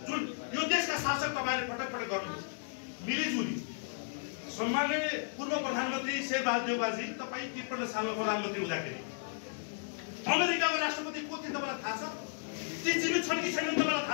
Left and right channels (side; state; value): right; silent; digital silence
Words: जुन यो देशका शासक तपाईँले पटक पटक गर्नुहुन्छ मिलिजुली। सम्माननीय पूर्व प्रधानमन्त्री शेरबहादुर देउवाजी, तपाईँ 53 सालमा प्रधानमन्त्री हुँदाखेरि अमेरिकाको राष्ट्रपति को थिए तपाईँलाई थाहा छ? ती जीवित छन् कि छैनन् तपाईँलाई